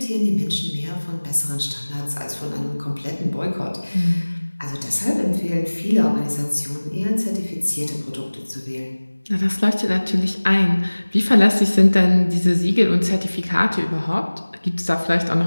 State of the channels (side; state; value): both; inverted; correlation -1.00